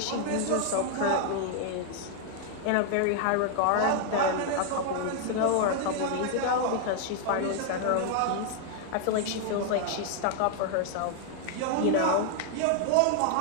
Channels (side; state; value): both; different; correlation 0.00